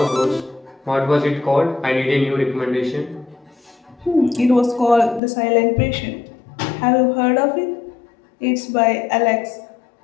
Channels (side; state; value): right; drops out; at 5.2 s